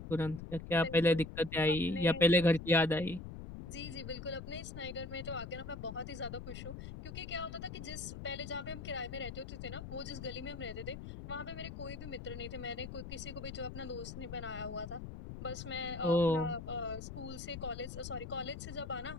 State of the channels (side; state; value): left; noise; rumble, 9 dB below the sound